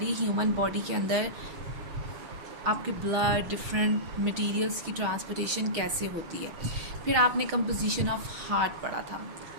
human body के अंदर आपके ब्लड डिफरेंट मटेरियल्स की ट्रांसपोर्टेशन कैसे होती है. फिर आपने कंपोजिशन ऑफ हार्ट पढ़ा था.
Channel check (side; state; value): left; late; 6.4 ms